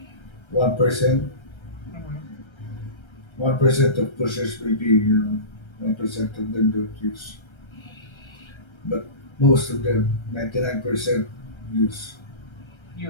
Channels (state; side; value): late; right; 1.3 ms